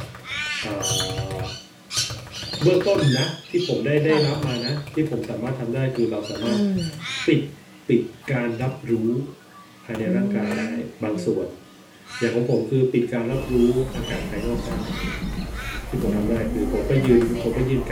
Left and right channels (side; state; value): both; identical; correlation 1.00